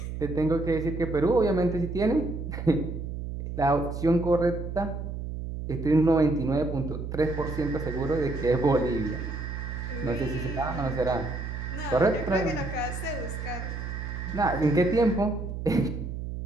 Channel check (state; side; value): noise; right; hum, 6 dB below the sound